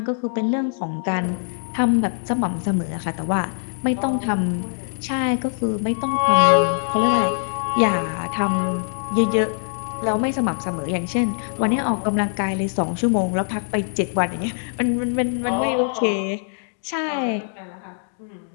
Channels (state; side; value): silent; right; digital silence